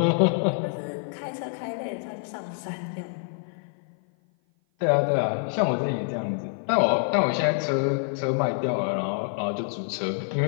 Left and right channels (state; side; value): silent; right; 55 dB below the other